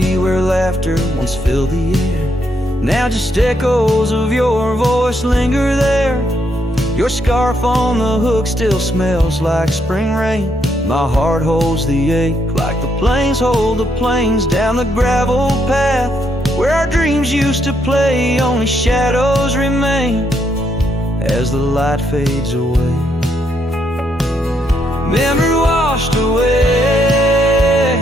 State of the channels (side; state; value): both; normal; correlation 0.76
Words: where laughter once filled the air. Now just echoes of your voice linger there. Your scarf on the hook still smells like spring rain. My heart holds the ache like the plains hold the plains down the gravel path where our dreams used to play. Only shadows remain as the light fades away. Memory washed